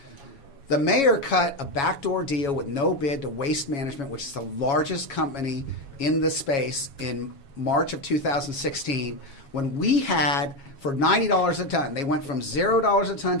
the mayor cut a backdoor deal with no bid to Waste Management, which is the largest company in the space, in March of 2016, when we had, for $90 a ton, they went from $0 a ton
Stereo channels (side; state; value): right; late; 7.2 ms